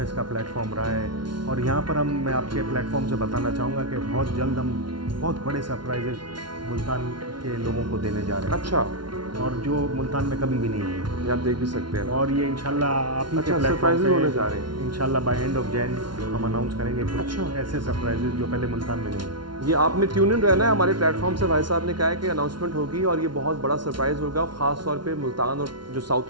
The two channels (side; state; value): left; late; 0.71 ms